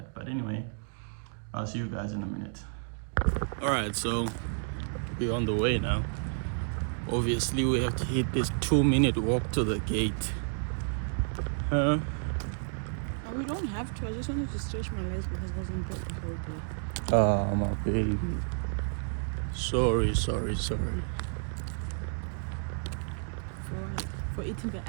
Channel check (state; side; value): silent; left; 57 dB below the other